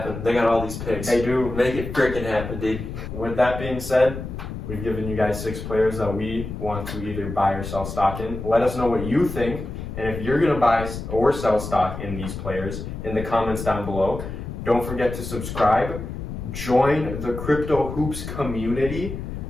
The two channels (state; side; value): noise; left; rumble, 7 dB below the sound